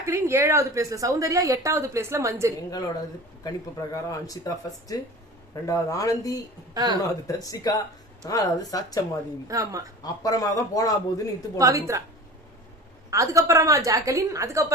7வது பிளேஸ்ல சௌந்தர்யா, 8வது பிளேஸ்ல மஞ்சரி. எங்களோட கணிப்பு பிரகாரம் அன்ஷிதா ஃபர்ஸ்ட், 2வது ஆனந்தி, 3வது தர்ஷிகா, 4வது சாச்சம்மா தேவி. ஆமா, அப்புறமா தான் போனா போதுன்னு இத்து பவித்ரா, அதுக்கப்புறமா ஜாக்லின்,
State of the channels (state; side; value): normal; both; correlation 0.36